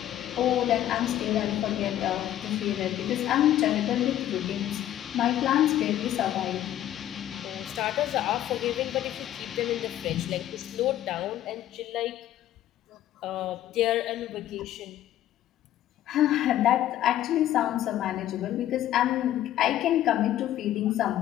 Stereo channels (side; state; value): right; quieter; 12.5 dB